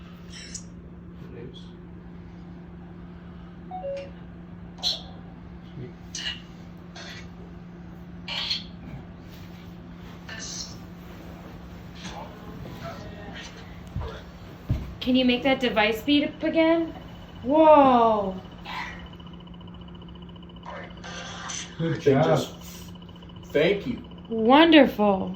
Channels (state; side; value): identical; both; correlation 1.00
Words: Can you make that device beat up again? Whoa. Good They job. just, thank you. Wonderful.